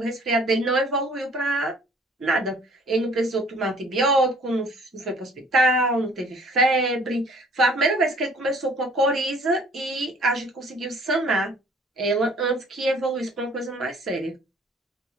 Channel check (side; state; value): both; normal; correlation 0.55